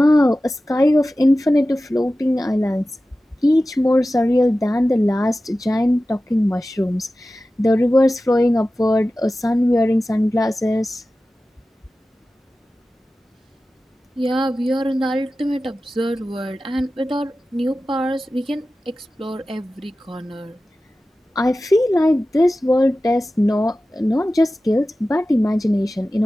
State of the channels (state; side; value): normal; both; correlation 0.95